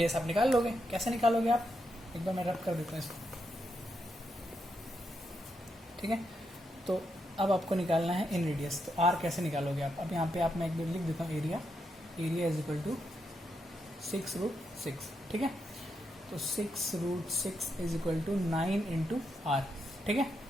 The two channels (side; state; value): both; normal; correlation 0.82